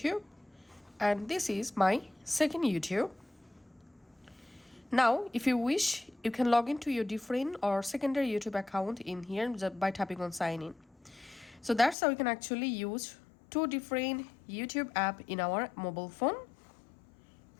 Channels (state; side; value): drops out; right; at 12.0 s